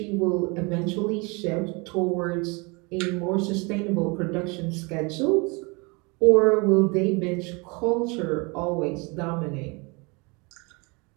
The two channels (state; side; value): quieter; left; 28.8 dB